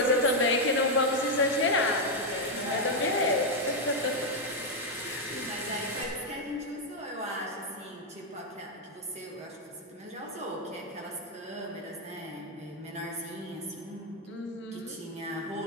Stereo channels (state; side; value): normal; both; correlation 0.01